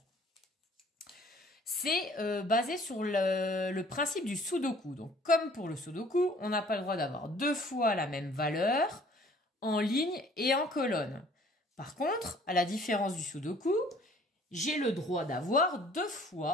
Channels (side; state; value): both; normal; correlation 0.55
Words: C'est basé sur le principe du Sudoku. Donc comme pour le Sudoku, on n'a pas le droit d'avoir 2 fois la même valeur en ligne et en colonne. Par contre, à la différence du Sudoku, j'ai le droit d'avoir 2